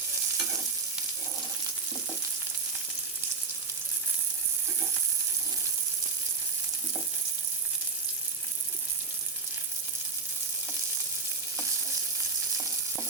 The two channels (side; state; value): left; quieter; 4.4 dB